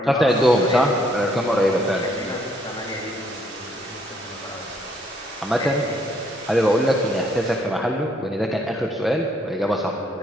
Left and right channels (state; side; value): normal; both; correlation 0.68